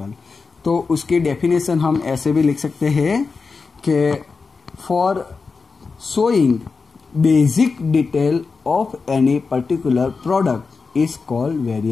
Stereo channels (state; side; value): quieter; right; 4.6 dB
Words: तो उसकी डेफिनेशन हम ऐसे भी लिख सकते हैं कि for showing basic detail of any particular product is called